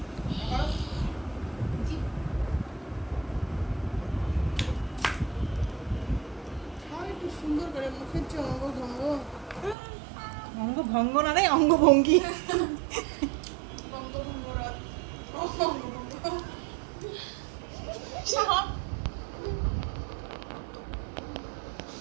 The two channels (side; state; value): left; drops out; at 9.8 s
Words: আর একটু সুন্দর করে মুখের চঙ্গ ভঙ্গ অঙ্গ ভঙ্গ না রে অঙ্গভঙ্গি।